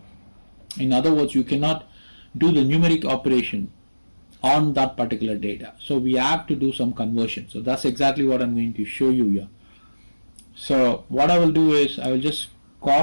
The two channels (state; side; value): inverted; both; correlation -1.00